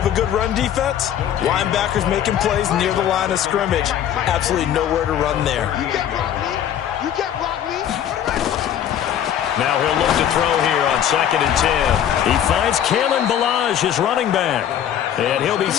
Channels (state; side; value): quieter; right; 10.1 dB